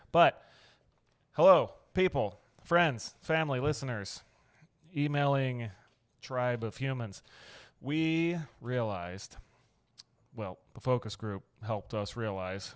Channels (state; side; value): identical; both; correlation 1.00